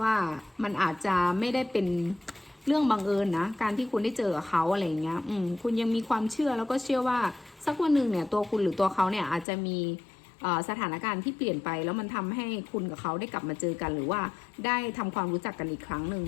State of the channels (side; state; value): right; drops out; at 9.5 s